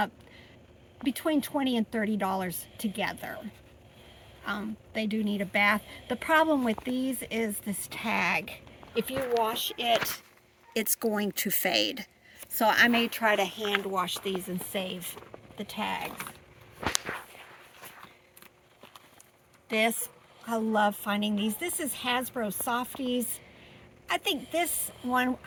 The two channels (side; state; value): both; identical; correlation 1.00